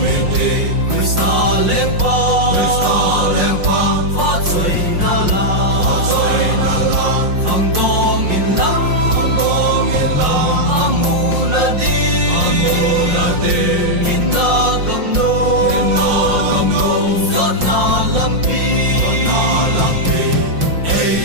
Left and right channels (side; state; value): left; late; 5.6 ms